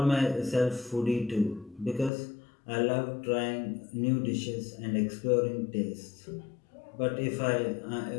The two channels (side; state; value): right; drops out; at 2.1 s